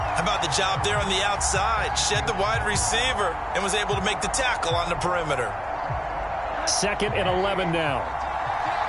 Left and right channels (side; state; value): both; identical; correlation 1.00